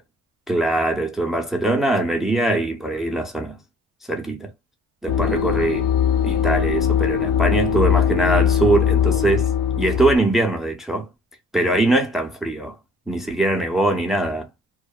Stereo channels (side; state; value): both; normal; correlation 0.55